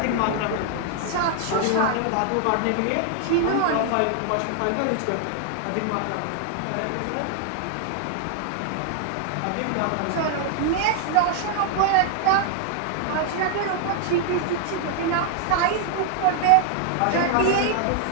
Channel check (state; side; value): different; both; correlation -0.01